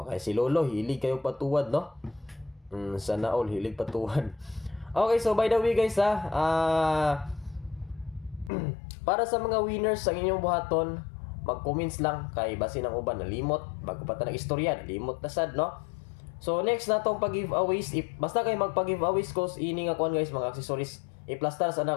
Kay si Lolo hilig kayo patuwad no. Sana all hilig patuwad. Okay, so by the way guys para sa mga winners sa inyong buhaton, mag-comments lang kay basin ang uban nalimot bago pa ta nag-istorya, nalimot na sad no. So next na tong pag-giveaways, basta kay magpa-giveaways ko ini nga kuan guys, mga accessories. I-plaster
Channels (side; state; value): right; drops out; at 8.5 s